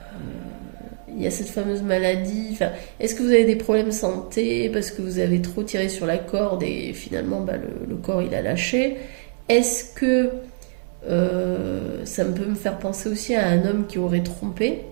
il y a cette fameuse maladie? Enfin, est-ce que vous avez des problèmes de santé parce que vous avez trop tiré sur la corde et finalement bah, le corps il a lâché? Est-ce que ça peut me faire penser aussi à un homme qui aurait trompé,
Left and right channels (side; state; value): left; silent; digital silence